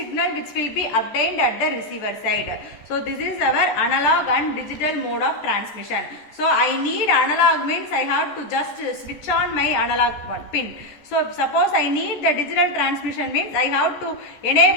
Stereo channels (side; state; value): right; late; 14 ms